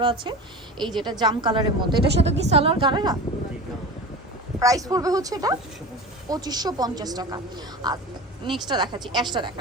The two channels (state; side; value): normal; both; correlation 0.32